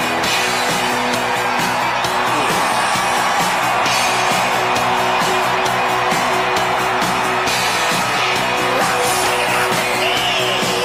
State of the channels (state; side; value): identical; both; correlation 1.00